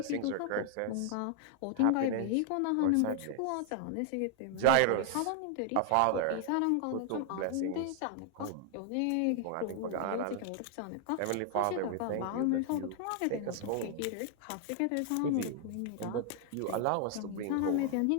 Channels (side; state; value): both; different; correlation 0.00